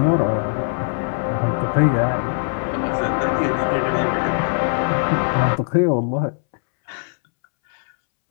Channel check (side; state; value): right; silent; 65 dB below the other